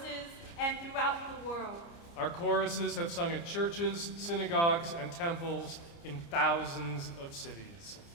and throughout the world. Our choruses have sung at churches, synagogues, and temples in thousands of cities.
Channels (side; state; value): right; late; 29 ms